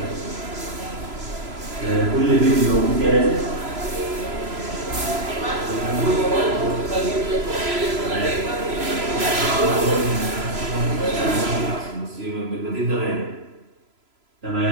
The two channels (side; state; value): left; late; 3.0 ms